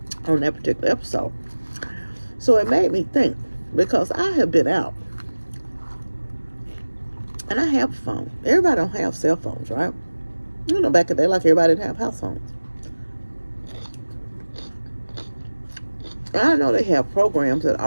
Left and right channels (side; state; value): both; inverted; correlation -1.00